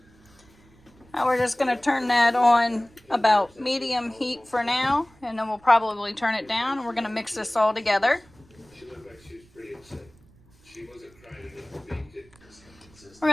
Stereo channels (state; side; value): noise; right; rumble, 28 dB below the sound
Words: Now we're just going to turn that on about medium heat for now, and then we'll probably turn it down, and we're going to mix this all together. We're